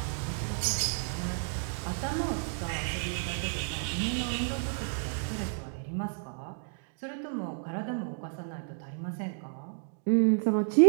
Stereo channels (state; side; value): silent; left; 57 dB below the other